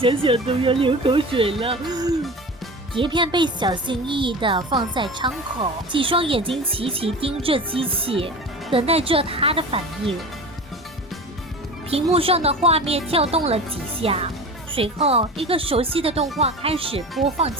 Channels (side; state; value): both; normal; correlation 0.33